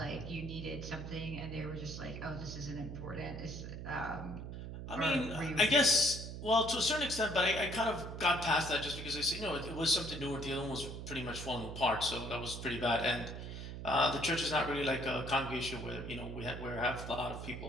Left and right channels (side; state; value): right; noise; hum, 8 dB below the sound